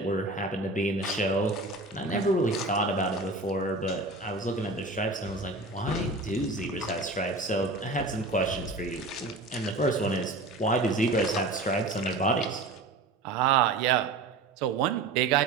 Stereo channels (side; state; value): left; quieter; 3.1 dB